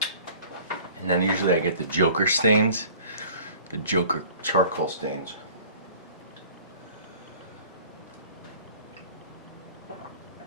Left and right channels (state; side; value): inverted; both; correlation -0.48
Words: And then usually I get the Joker stains. The Joker charcoal stains.